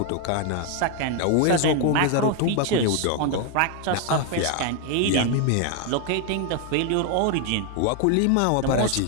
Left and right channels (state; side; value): different; both; correlation 0.01